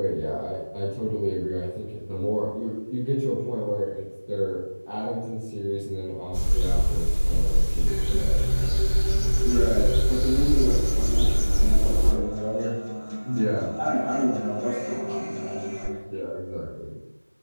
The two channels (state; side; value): inverted; both; correlation -1.00